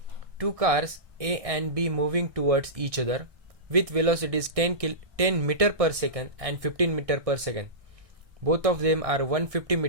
Two cars A and B moving towards each other with velocities 10 meter per second and 15 meter per second. Both of them are 150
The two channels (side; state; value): left; late; 1.6 ms